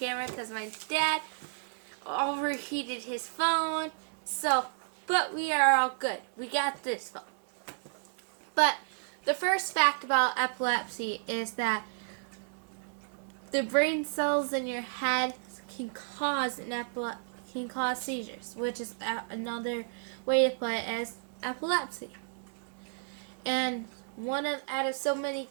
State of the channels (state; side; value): silent; left; digital silence